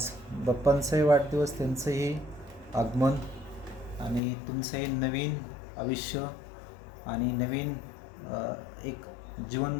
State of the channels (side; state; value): right; drops out; at 4.2 s